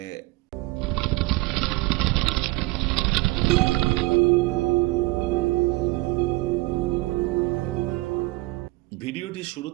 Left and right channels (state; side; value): quieter; left; 22.2 dB